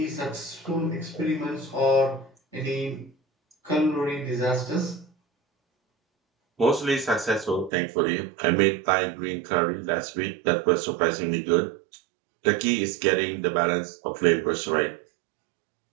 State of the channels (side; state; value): left; drops out; at 7.7 s